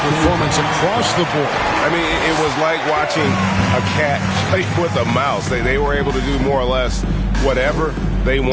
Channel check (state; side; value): identical; both; correlation 1.00